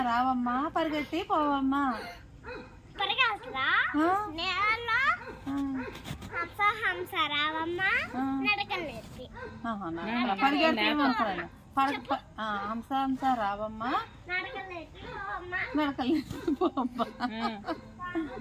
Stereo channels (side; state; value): both; identical; correlation 1.00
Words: రావమ్మా పరిగెట్టి పోవమ్మా. హంస రావమ్మా నడకలు నేర్పి. పరిగెట్టి హంస హంస రావమ్మా నడకలు నేర్పి పోవమ్మా.